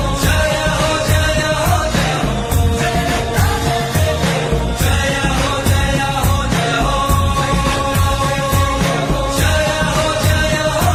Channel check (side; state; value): both; identical; correlation 1.00